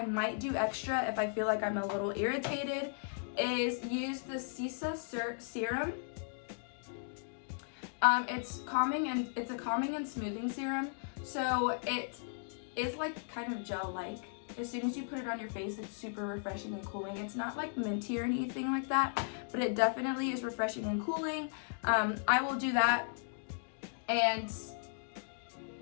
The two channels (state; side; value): silent; right; digital silence